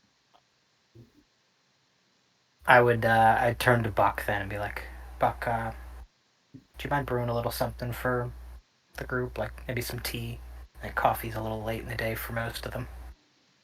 I'd turn to Buck then and be like, Buck, do you mind brewing a little something for the group? Like maybe some tea. Like coffee's a little late in the day for most of them.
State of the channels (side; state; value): both; identical; correlation 1.00